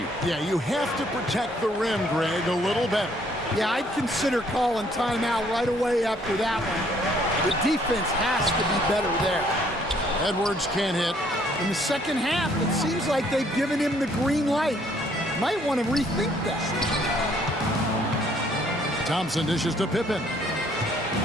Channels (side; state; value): both; normal; correlation 0.64